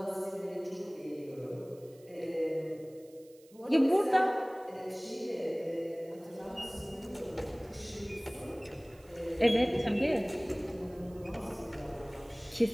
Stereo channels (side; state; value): right; noise; hiss, 27 dB below the sound